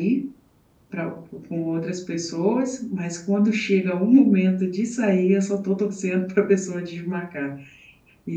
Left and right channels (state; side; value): identical; both; correlation 1.00